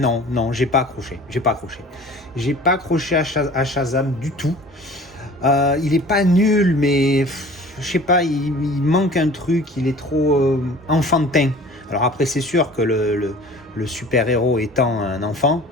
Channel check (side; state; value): both; normal; correlation 0.45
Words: j'ai pas accroché, j'ai pas accroché à Shazam du tout. Il est pas nul mais je sais pas, il manque un truc, il est trop enfantin. Alors après c'est sûr que le super-héros étant un enfant